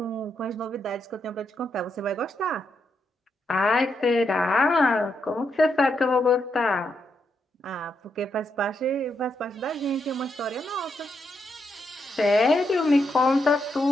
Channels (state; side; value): normal; both; correlation 0.81